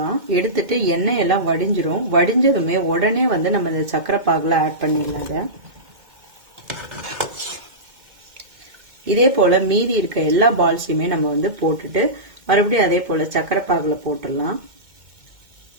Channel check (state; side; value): late; left; 2.1 ms